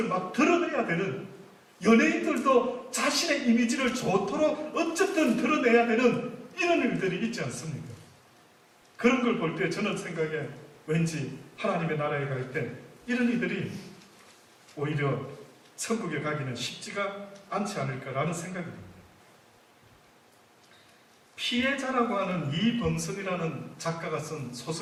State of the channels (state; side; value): identical; both; correlation 1.00